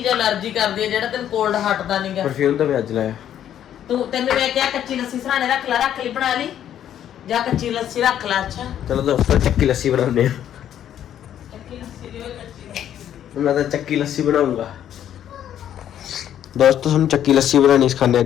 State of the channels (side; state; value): right; quieter; 10.5 dB